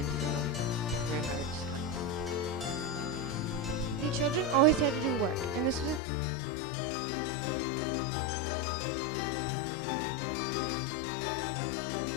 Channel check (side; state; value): right; drops out; at 6.0 s